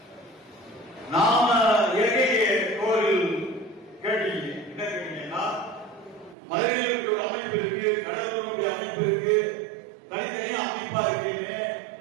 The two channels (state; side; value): drops out; left; at 6.4 s